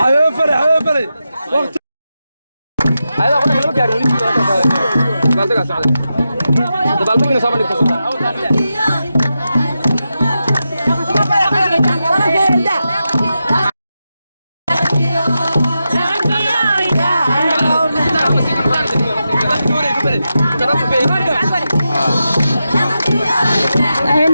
ايوه فري وقت هذا قلنا كلام كاري قال تقع سعد دبالكم من صامني كسر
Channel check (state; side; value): inverted; both; correlation -0.89